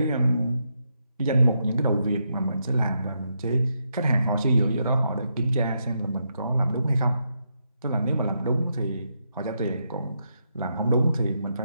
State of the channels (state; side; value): inverted; both; correlation -0.81